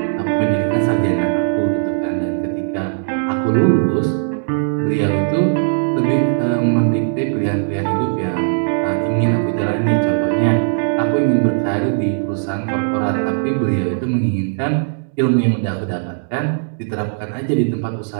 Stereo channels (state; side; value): silent; left; digital silence